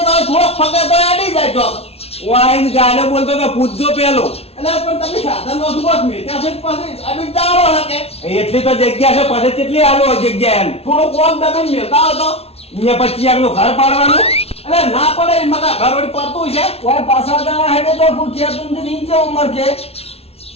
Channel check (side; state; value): right; late; 0.30 ms